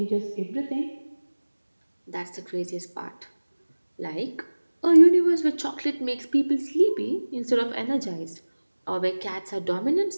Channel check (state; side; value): inverted; both; correlation -1.00